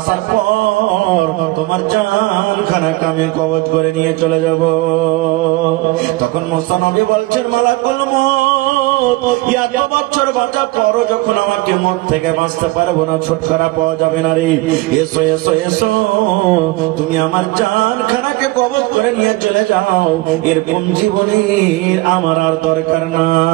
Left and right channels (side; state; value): left; quieter; 21.2 dB